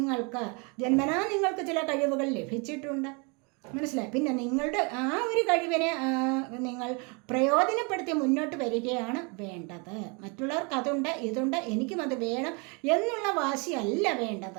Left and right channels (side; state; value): left; quieter; 32.1 dB